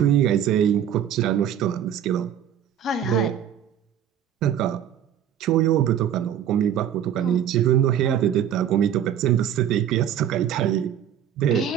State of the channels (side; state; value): left; quieter; 9.7 dB